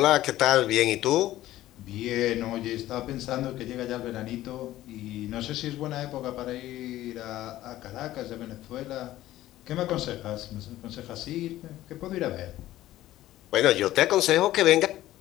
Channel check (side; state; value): right; quieter; 14.8 dB